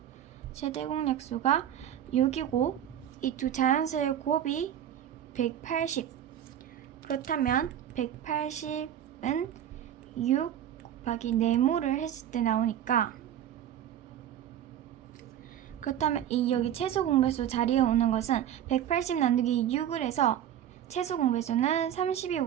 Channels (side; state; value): left; quieter; 10.5 dB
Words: 6이고 이 두 자연수의 곱이 180. 그렇다면 180은 6 곱하기 네모를 했을 때 나오니까, 그렇다면 이 여기 최소 공배수 자리에 오는 것은 180 나누기 6을 해서 최소 공배수는